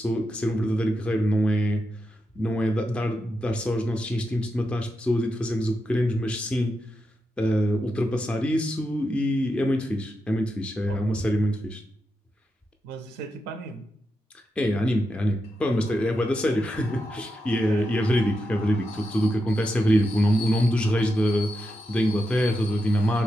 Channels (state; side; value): normal; both; correlation 0.86